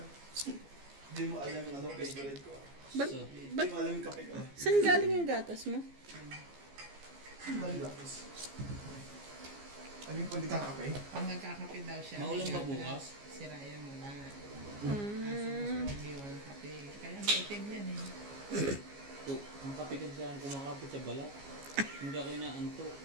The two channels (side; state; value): left; late; 15 ms